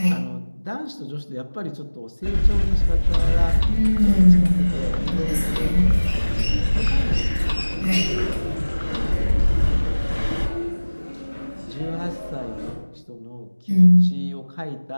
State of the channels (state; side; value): inverted; both; correlation -1.00